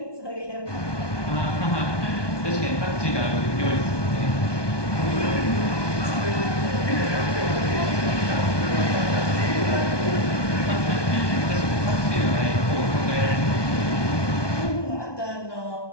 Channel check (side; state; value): right; late; 1.2 ms